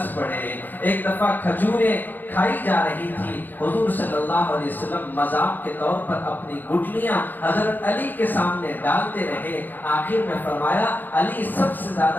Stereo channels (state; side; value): late; right; 0.087 ms